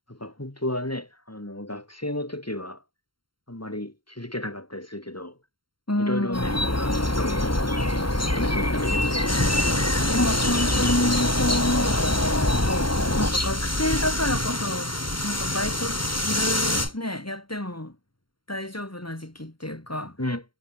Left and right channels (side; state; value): right; late; 0.73 ms